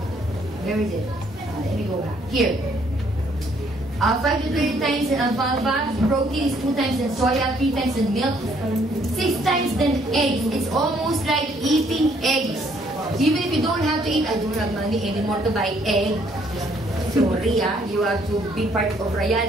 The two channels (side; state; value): both; normal; correlation 0.66